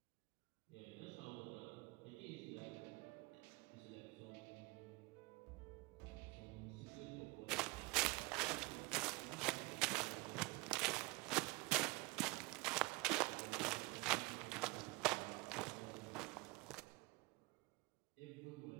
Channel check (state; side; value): quieter; left; 25.0 dB